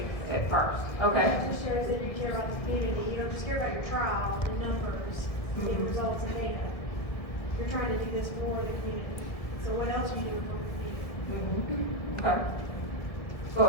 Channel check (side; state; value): right; late; 1.6 ms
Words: at first, okay? It just shows that you care about the community. You don't just care about your trial, the numbers, the results and data. You're trying to do this for the community. So what else are you doing for the community? Okay. Go